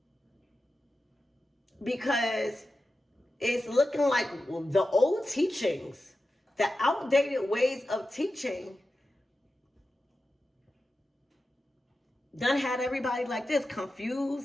Because it's looking like the old teachings, the outdated ways of teaching, done had everybody like this,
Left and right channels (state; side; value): normal; both; correlation 0.92